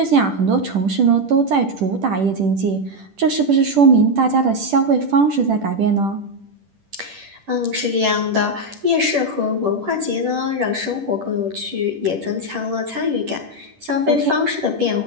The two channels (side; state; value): left; late; 10 ms